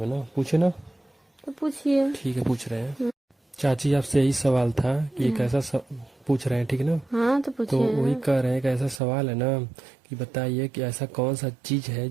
है ना, पूछे ना। तो पूछिए। ठीक है, पूछ रहे हैं। चाची, आपसे यही सवाल था कि एक ऐसा पूछ रहे हैं, ठीक है ना? हाँ तो तो वही पूछिए। कह रहे हैं कि ऐसा सवाल है ना कि बताइए कि ऐसा कौन सा चीज है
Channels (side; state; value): left; drops out; at 9.0 s